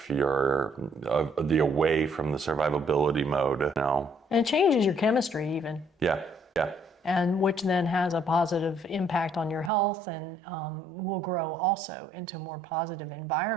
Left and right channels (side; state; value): left; drops out; at 9.7 s